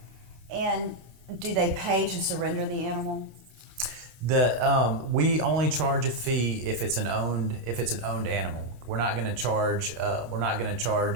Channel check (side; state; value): left; late; 26 ms